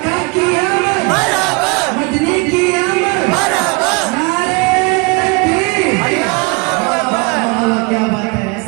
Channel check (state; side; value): quieter; left; 28.9 dB